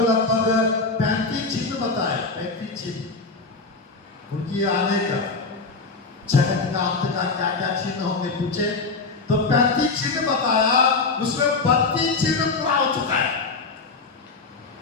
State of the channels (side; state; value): right; quieter; 4.0 dB